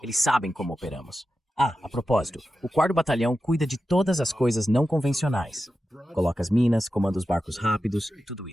Eles sabem como operamos. A propósito, o 4º Batalhão cuida de todas as coisas não convencionais. Coloca as minas, comanda os barcos rápidos, tudo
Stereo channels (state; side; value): normal; both; correlation 0.91